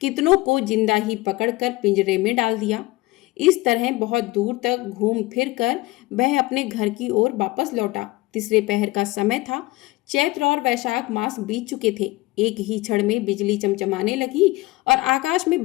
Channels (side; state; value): right; quieter; 20.3 dB